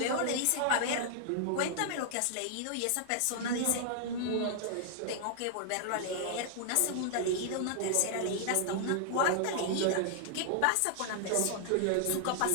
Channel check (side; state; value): both; different; correlation -0.01